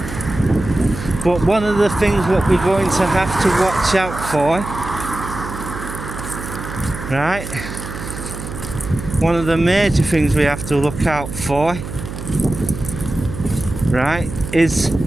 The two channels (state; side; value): noise; right; hum, 9 dB below the sound